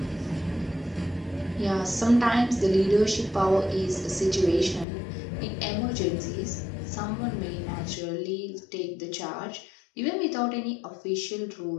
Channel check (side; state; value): right; drops out; at 4.9 s